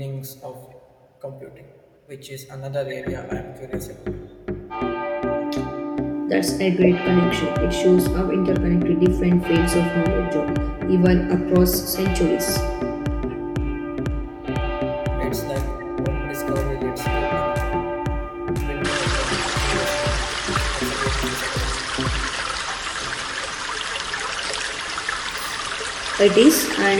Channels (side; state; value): both; identical; correlation 1.00